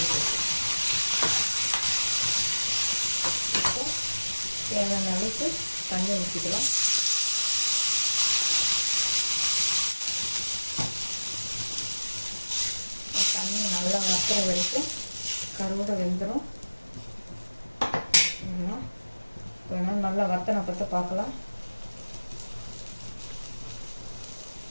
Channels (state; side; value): inverted; both; correlation -1.00